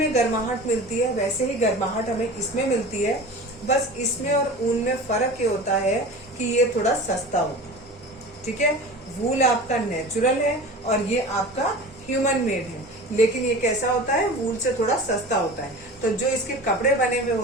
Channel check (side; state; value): both; normal; correlation 0.36